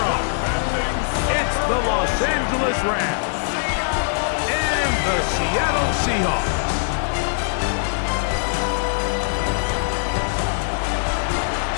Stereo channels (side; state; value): right; silent; digital silence